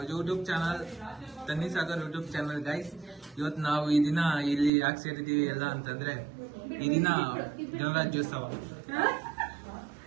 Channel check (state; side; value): drops out; left; at 4.7 s